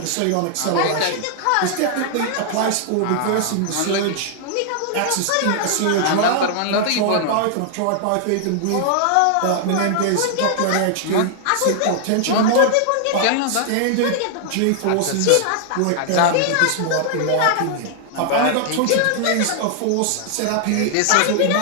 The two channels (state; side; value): different; both; correlation -0.01